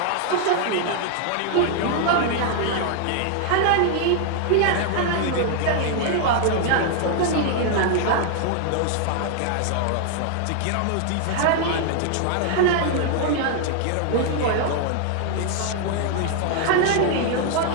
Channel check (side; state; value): both; different; correlation 0.00